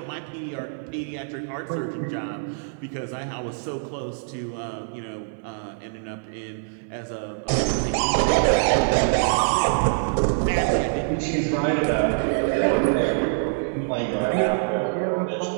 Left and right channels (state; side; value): silent; left; 61 dB below the other